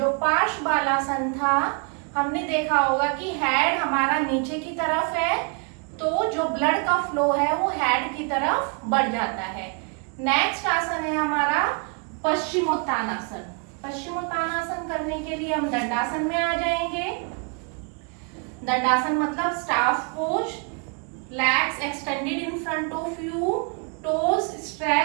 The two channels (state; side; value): quieter; left; 36.4 dB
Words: पार्श्व बालासन था, हमने देखा होगा कि हेड हमारा नीचे की तरफ है तो जो ब्लड का फ्लो है वो हेड की तरफ बढ़ जाता है। नेक्स्ट आसन है हमारा पश्चिमोत्तानासन। पश्चिमोत्तानासन करने के लिए हम दंडासन में आ जाएंगे। दंडासन मतलब staff pose. Legs extended in front of you, toes